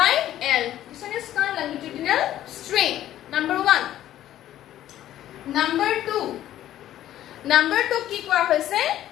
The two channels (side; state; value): right; quieter; 12.6 dB